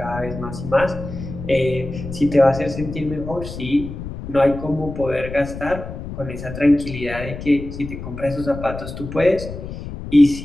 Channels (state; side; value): noise; left; rumble, 9 dB below the sound